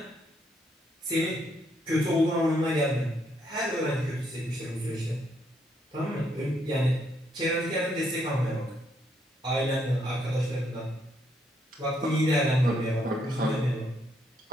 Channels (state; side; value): normal; both; correlation 0.74